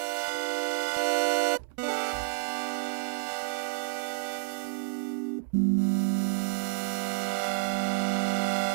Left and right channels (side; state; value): left; silent; 58 dB below the other